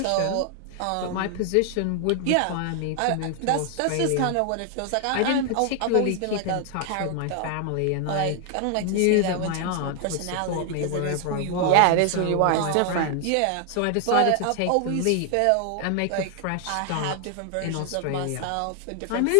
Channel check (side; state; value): both; different; correlation 0.00